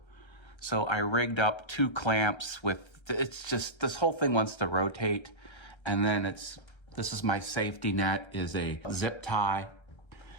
So I rigged up two clamps with, it's just, this whole thing wants to rotate. And then this is my safety net, is a zip tie.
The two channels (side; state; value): right; late; 1.3 ms